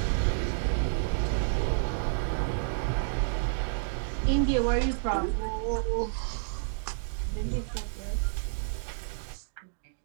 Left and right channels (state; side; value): silent; left; digital silence